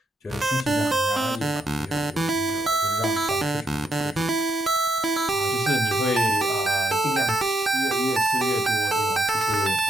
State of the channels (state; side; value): normal; both; correlation 0.79